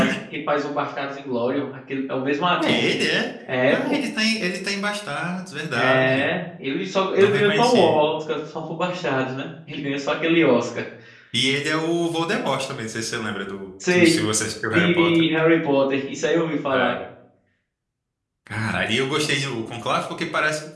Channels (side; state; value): both; identical; correlation 1.00